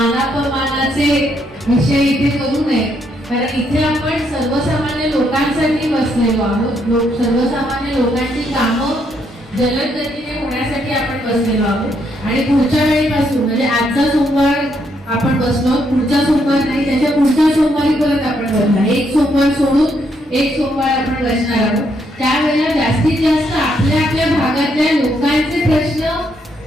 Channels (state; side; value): normal; both; correlation 0.75